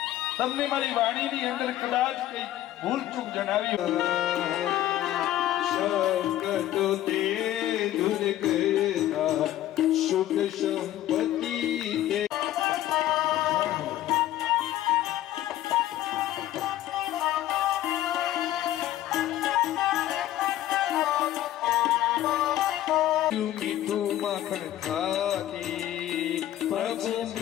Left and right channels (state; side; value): quieter; right; 13.4 dB